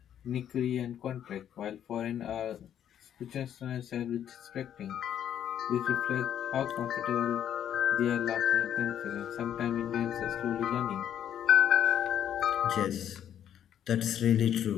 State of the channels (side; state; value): right; quieter; 10.0 dB